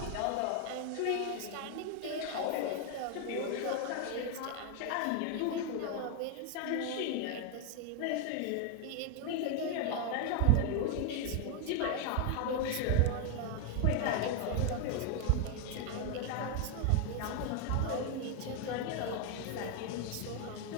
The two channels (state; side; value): different; both; correlation 0.01